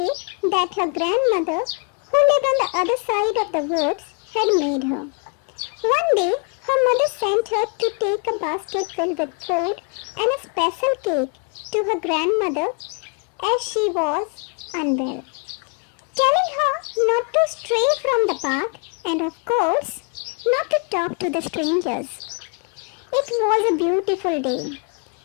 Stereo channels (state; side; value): quieter; right; 38.8 dB